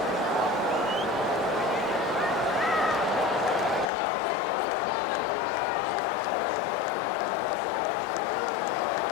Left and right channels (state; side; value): drops out; right; at 3.9 s